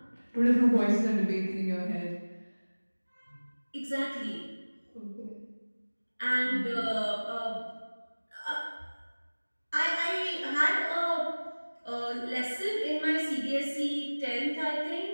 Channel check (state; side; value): inverted; both; correlation -1.00